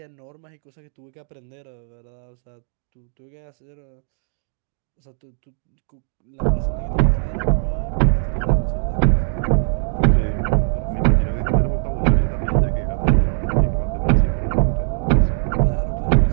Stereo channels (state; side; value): silent; left; digital silence